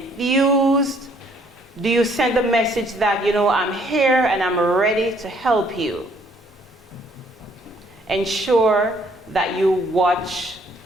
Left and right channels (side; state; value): both; normal; correlation 0.64